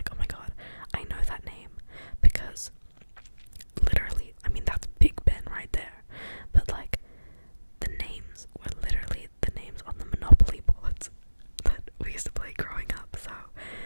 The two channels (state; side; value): inverted; both; correlation -1.00